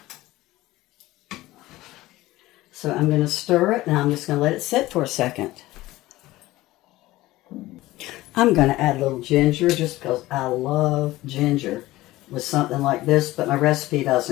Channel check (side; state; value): right; quieter; 17.6 dB